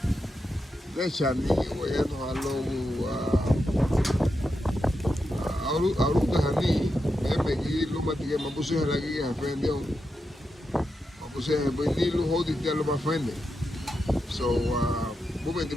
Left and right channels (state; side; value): normal; both; correlation 0.87